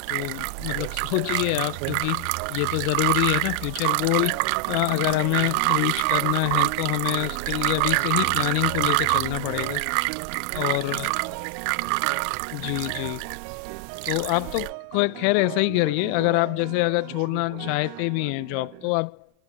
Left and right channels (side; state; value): both; different; correlation 0.00